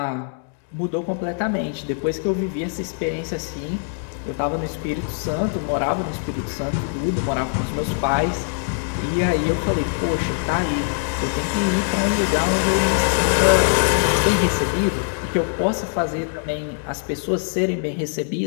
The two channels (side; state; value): right; silent; digital silence